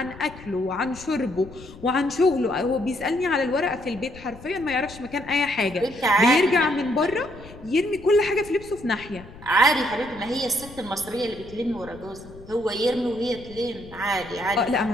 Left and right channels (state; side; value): noise; left; rumble, 18 dB below the sound